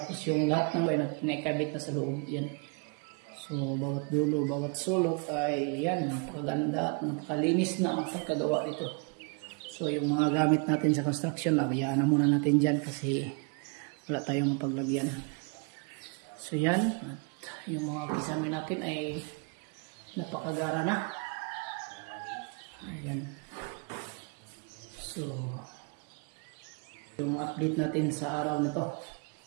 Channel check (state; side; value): quieter; left; 35.3 dB